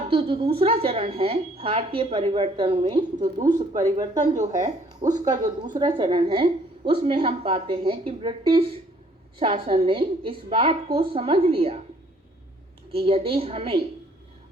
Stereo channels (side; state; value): both; normal; correlation 0.61